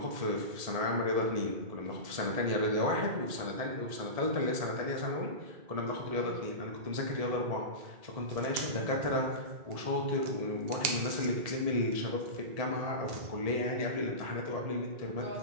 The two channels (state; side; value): late; left; 1.7 ms